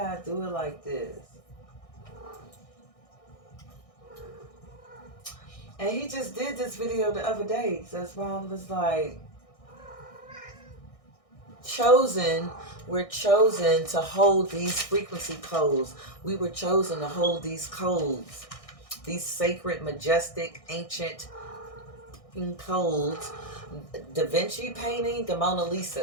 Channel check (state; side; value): late; right; 1.6 ms